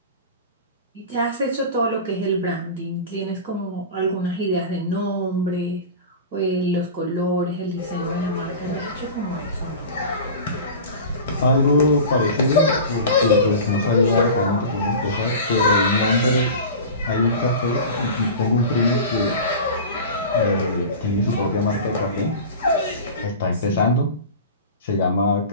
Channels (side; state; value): both; inverted; correlation -0.33